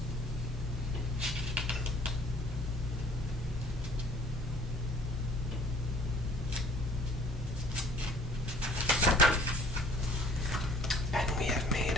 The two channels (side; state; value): both; normal; correlation 0.55